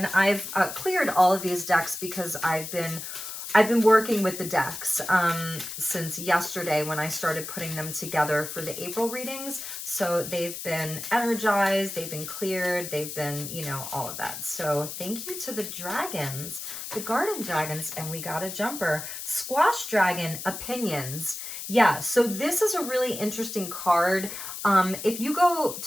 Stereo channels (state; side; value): noise; left; hiss, 8 dB below the sound